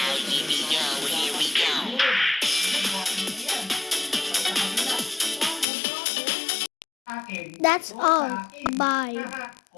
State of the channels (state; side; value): drops out; right; at 5.7 s